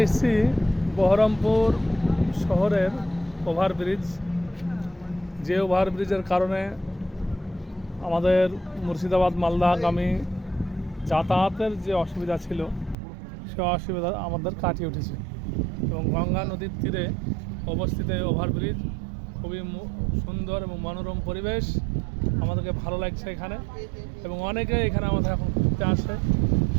এসেছি বহরমপুর শহরের ওভারব্রিজ। যে ওভারব্রিজের কারণে আমাদের মুর্শিদাবাদ মালদাগামী যাতায়াতের যে অসুবিধা ছিল সে অসুবিধা আমাদের কাটিয়ে উঠেছে এবং গঙ্গা নদীর তীরে অবস্থিত এই ওভারব্রিজ খুবই সুন্দর এবং মনোরম পরিবেশ। আমাদেরকে ভালো লাগছে এখানে এবং অনেকে এখানে আমাদের এখন ঘুরতে আসে,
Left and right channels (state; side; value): drops out; left; at 13.0 s